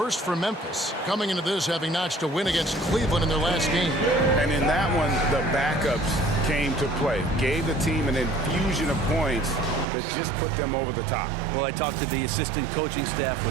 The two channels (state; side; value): drops out; left; at 9.9 s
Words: for Memphis. Coming into this having notched a win against Cleveland in their last game. And in that one, the backups came to play. Gave the team an infusion of points that just put them over the top. Well, I talked to the assistant coaching staff.